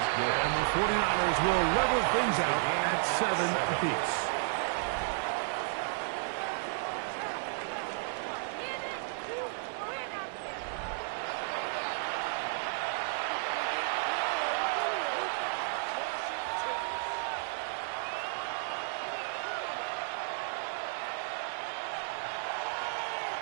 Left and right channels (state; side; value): silent; left; 56 dB below the other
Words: And the 49ers will level things out at 7 apiece.